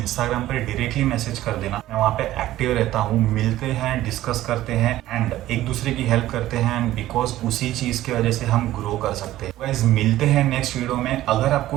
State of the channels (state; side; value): quieter; left; 14.7 dB